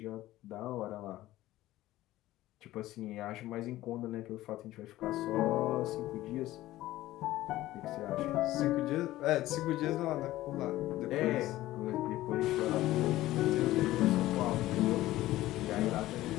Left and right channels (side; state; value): right; quieter; 15.9 dB